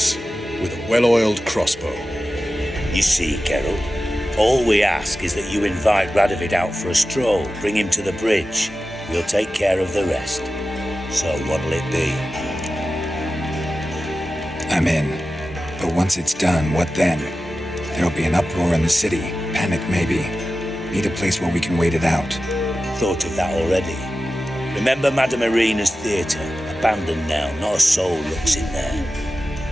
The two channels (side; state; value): both; normal; correlation 0.94